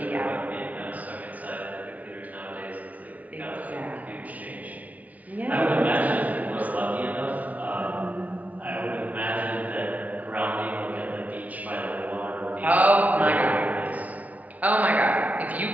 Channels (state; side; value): late; left; 0.072 ms